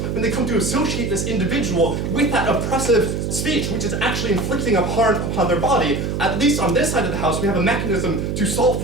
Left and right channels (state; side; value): noise; right; hum, 2 dB below the sound